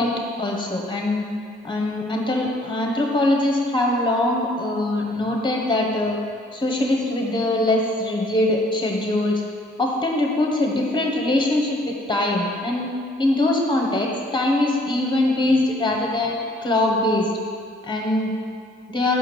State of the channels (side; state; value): both; normal; correlation 0.60